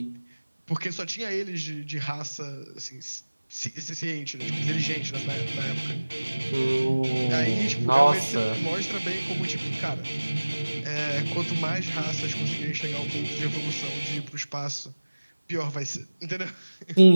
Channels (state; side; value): inverted; both; correlation -1.00